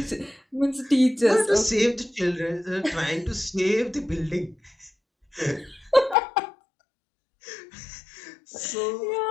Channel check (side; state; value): right; drops out; at 6.2 s